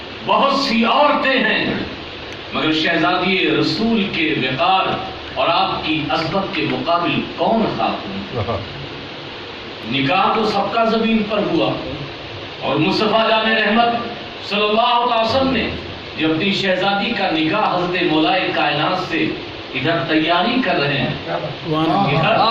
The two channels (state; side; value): identical; both; correlation 1.00